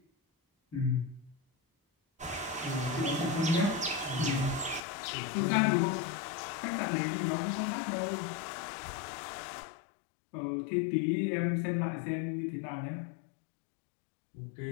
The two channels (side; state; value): right; drops out; at 4.8 s